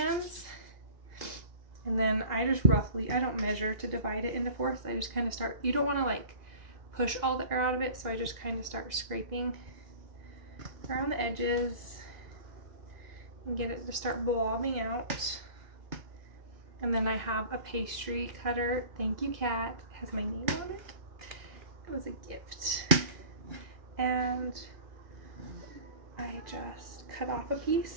and then I just roughly, I don't measure to divide it into fourths. I just kind of start, you don't want to like push all the air out of it, so I just kind of start scraping around the edges and get it to start blobbing out. And then I have a pastry cutter. Thank you, Kat. It has my name on it. It was a gift. And I just cut off a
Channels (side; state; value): left; late; 2.0 ms